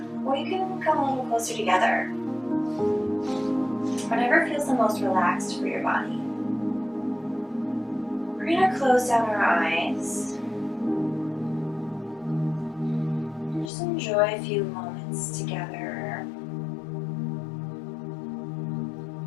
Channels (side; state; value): right; drops out; at 13.7 s